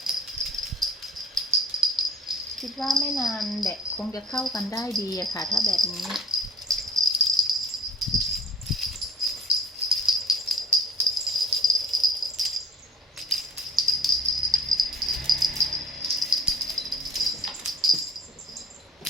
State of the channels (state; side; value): normal; both; correlation 0.48